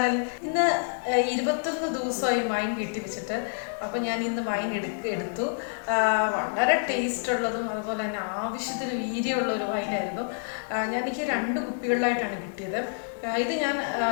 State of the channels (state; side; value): silent; right; 60 dB below the other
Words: ഇന്ന് 21 ദിവസമായി wine വീട്ടിൽ വെച്ചിട്ട്. അപ്പോൾ ഞാൻ ഇന്ന് വൈൻ എടുത്തു. വളരെ ടേസ്റ്റ് ഉള്ളതും അതുപോലെ തന്നെ ആവശ്യത്തിന് വീര്യമുള്ള ഒരു വൈനായിരുന്നു. എനിക്ക് 2 കുപ്പികളിലായിട്ടാണ് കിട്ടിയത്. ഇത് ഞാൻ